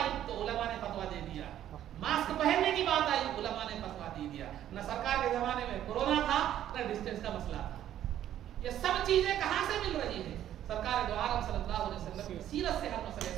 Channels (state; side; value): quieter; left; 11.5 dB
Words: تو علماء نے فتویٰ دے دیا، ماسک پہننے کی بات آئی علماء نے فتویٰ دے دیا، نہ سرکار کے زمانے میں کورونا تھا نہ ڈسٹینس کا مسئلہ تھا۔ یہ سب چیزیں کہاں سے مل رہی ہیں؟ سرکار دو عالم صلی اللہ علیہ وسلم کی سیرت سے ہر مسئلے